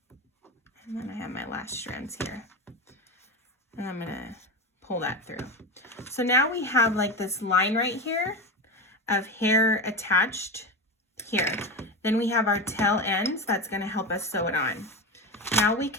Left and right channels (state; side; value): normal; both; correlation 0.21